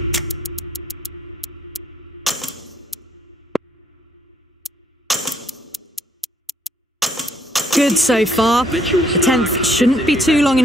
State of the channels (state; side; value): normal; both; correlation 0.67